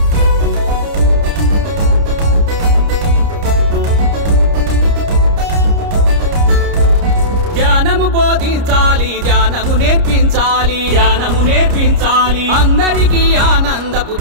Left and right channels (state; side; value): late; left; 29 ms